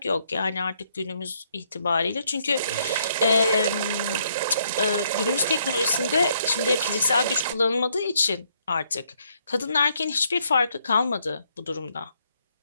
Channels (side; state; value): both; inverted; correlation -0.71